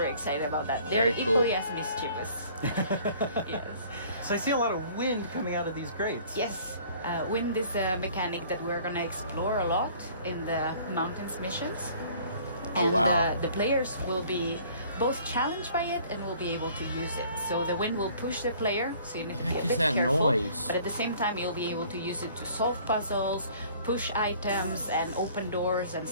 excited about that. They're Very cool. equally as mischievous. Yes. So I see a lot of wind coming out of these grates. Yes. Wind is a mechanic that we're gonna explore a lot in the mountains missions. Oh, And wow. the players will be both challenged by it and will be able to use it. So the wind will push the player, so you need to be a Heck is bit that careful. noise? But at the same time, you'll be able to use it to solve puzzles, push items, and open doors and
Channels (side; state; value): both; inverted; correlation -0.53